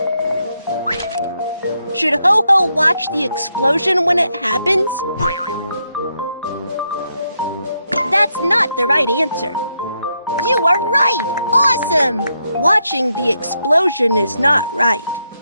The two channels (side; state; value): both; inverted; correlation -0.81